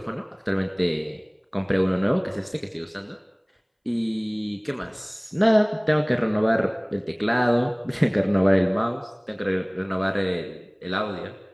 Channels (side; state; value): both; identical; correlation 1.00